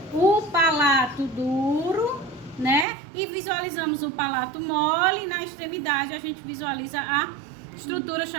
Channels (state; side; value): drops out; left; at 2.9 s